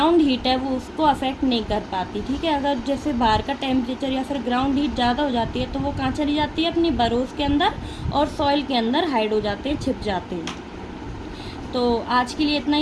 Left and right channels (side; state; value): both; identical; correlation 1.00